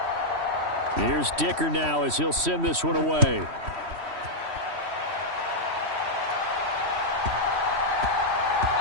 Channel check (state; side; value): late; left; 3.1 ms